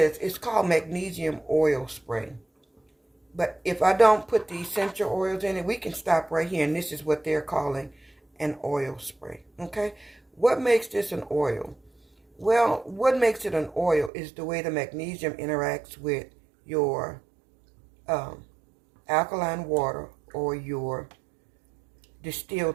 it's called magnesium oil spray. But if I don't put the essential oils in it, we can stop right here, and this is what they're calling an oil spray, okay? What makes this an oil? Well, what makes it an oil is the way the magnesium interacts with your alkaline water or your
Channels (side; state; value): left; drops out; at 14.1 s